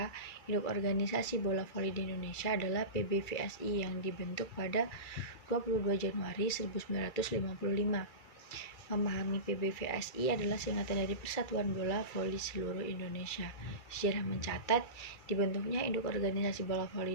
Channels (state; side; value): late; right; 2.3 ms